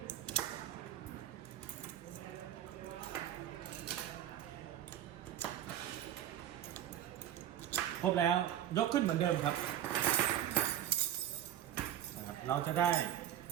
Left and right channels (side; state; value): left; quieter; 11.2 dB